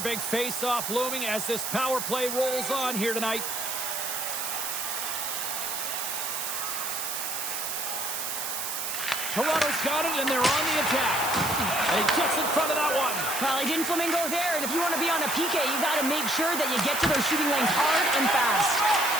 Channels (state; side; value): noise; right; hiss, 3 dB below the sound